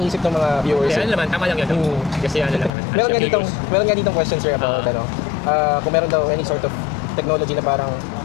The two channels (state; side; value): drops out; right; at 2.7 s